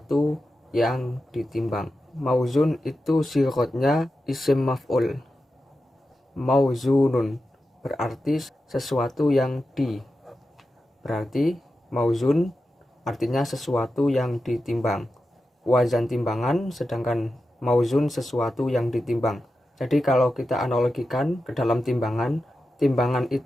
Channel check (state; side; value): normal; both; correlation 0.91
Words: yang ditimbang. Mauzun itu sighotnya isim maf'ul. Mauzunun berarti sesuatu yang berarti mauzun artinya sesuatu yang ditimbang. Wazan timbangan, sedangkan mauzun sesuatu yang ditimbang. Jadi kalau kita analogikan ke dalam timbangan, timbangan